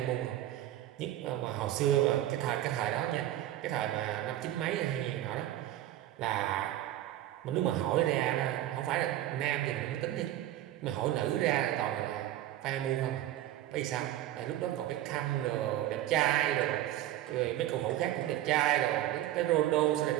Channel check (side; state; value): left; quieter; 13.5 dB